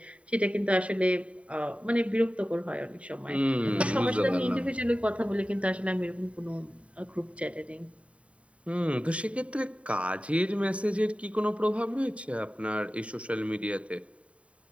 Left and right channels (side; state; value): left; late; 0.064 ms